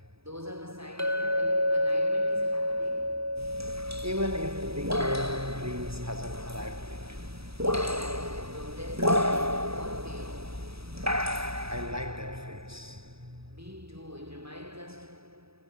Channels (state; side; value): late; left; 0.77 ms